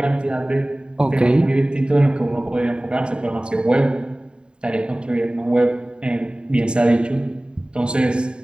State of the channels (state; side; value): late; left; 0.050 ms